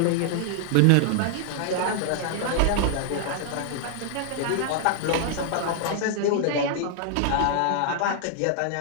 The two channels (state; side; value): different; both; correlation 0.00